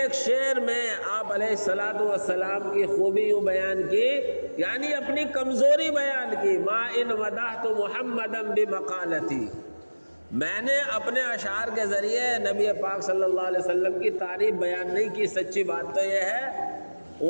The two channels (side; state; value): both; inverted; correlation -1.00